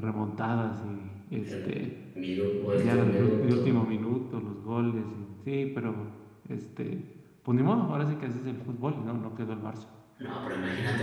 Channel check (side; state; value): both; identical; correlation 1.00